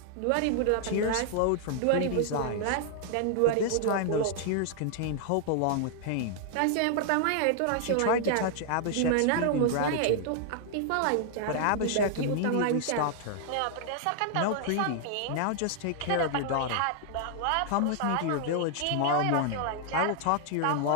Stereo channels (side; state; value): both; different; correlation 0.00